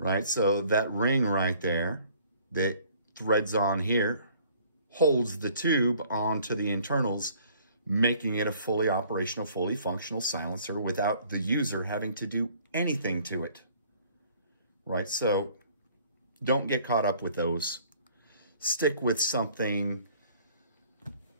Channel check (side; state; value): both; inverted; correlation -0.56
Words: so that ring right there that threads on here holds the tube onto the internals, making it a fully operational, fully functional silencer without the user having to do anything to it. Right, so don't get caught up with those. stick with something